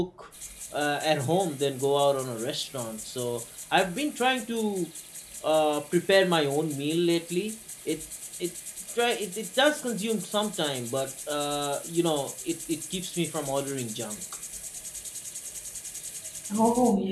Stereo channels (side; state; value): both; identical; correlation 1.00